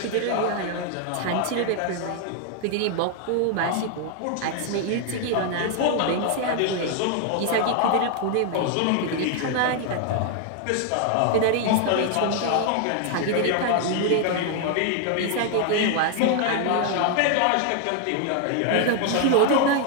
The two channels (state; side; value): different; both; correlation 0.00